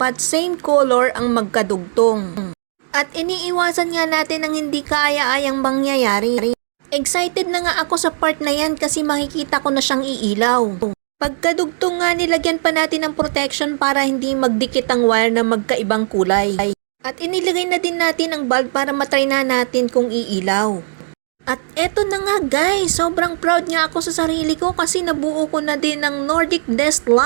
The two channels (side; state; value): left; silent; 67 dB below the other